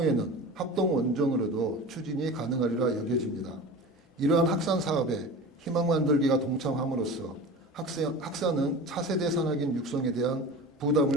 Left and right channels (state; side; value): normal; both; correlation 0.34